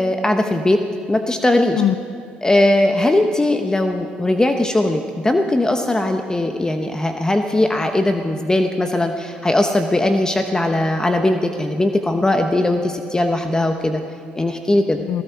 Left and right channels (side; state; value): both; normal; correlation 0.90